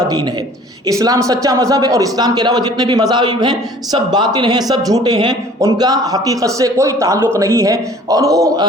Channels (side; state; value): both; normal; correlation 0.51